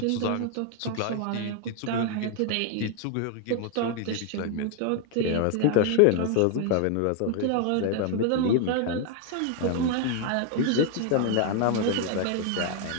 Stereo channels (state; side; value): different; both; correlation 0.00